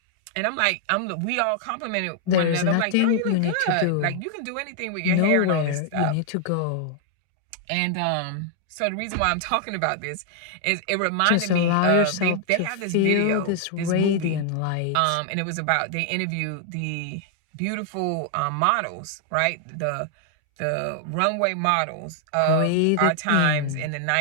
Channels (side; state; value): both; different; correlation 0.00